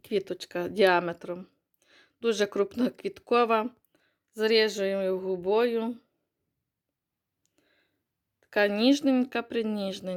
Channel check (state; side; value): identical; both; correlation 1.00